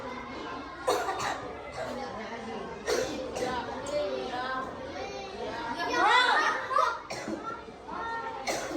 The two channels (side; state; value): both; identical; correlation 1.00